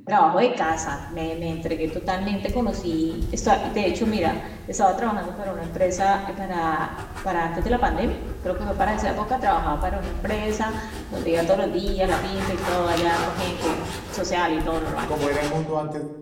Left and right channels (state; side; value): identical; both; correlation 1.00